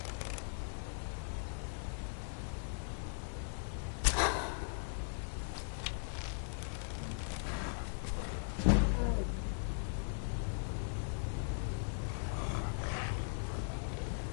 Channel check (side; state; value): right; silent; digital silence